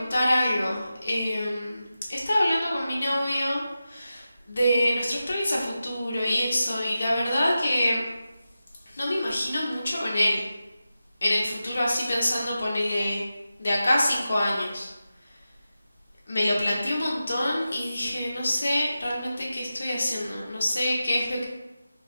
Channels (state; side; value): inverted; both; correlation -0.92